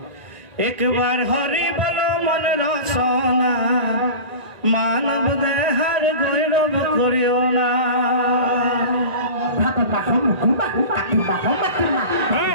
একবাৰ হৰি বল মন ৰচনা মানৱ দেহাৰ গৌৰৱ কৰিও না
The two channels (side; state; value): left; late; 1.9 ms